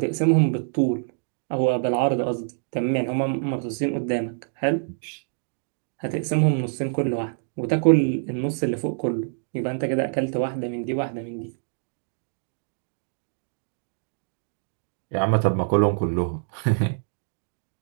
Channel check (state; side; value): silent; left; digital silence